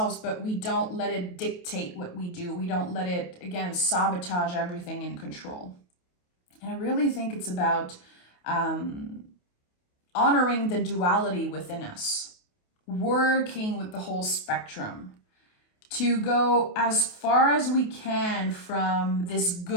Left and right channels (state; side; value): late; right; 28 ms